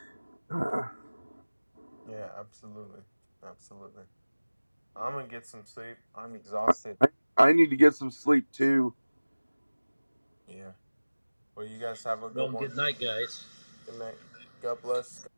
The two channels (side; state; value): both; inverted; correlation -1.00